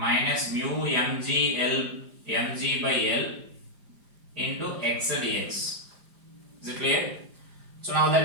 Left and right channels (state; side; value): late; left; 4.9 ms